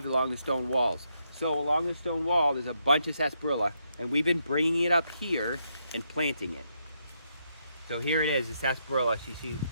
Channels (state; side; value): inverted; both; correlation -0.78